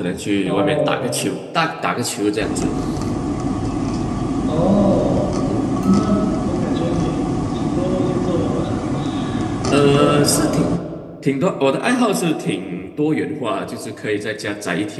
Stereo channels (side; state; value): both; identical; correlation 1.00